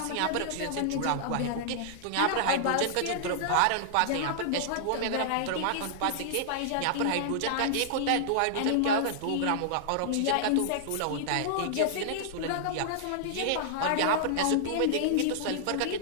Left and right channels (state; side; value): different; both; correlation -0.01